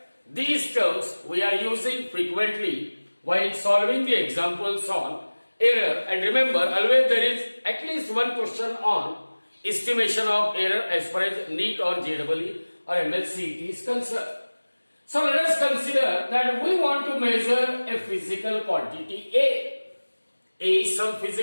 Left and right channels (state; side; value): inverted; both; correlation -1.00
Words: These terms we are using frequently while solving the examples on error. And remember, always there is at least one question on estimation of error as far as NEET or JEE or MLCET is concerned. So let us consider that we want to measure a physical quantity A. A is some